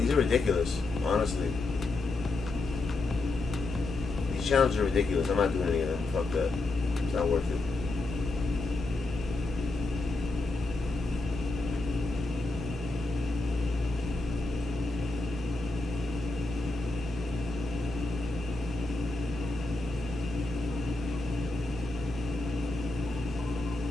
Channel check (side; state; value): right; quieter; 3.1 dB